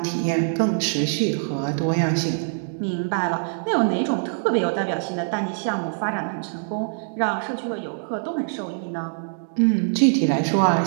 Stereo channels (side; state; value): left; silent; digital silence